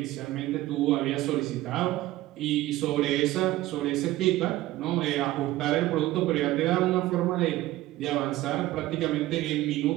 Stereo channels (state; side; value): quieter; left; 16.4 dB